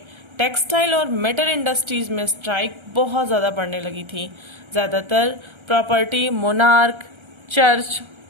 टेक्सटाइल और मेटल इंडस्ट्रीज में स्ट्राइक बहुत ज़्यादा बढ़ने लगी थी। ज़्यादातर प्रॉपर्टी मोनार्क, चर्च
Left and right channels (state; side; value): late; left; 1.3 ms